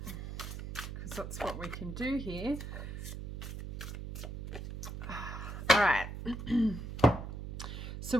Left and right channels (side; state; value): right; noise; hum, 7 dB below the sound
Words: that's what we can do here. All right. So